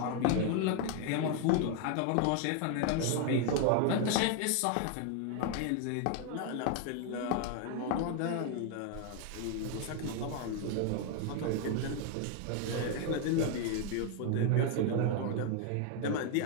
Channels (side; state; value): both; different; correlation 0.01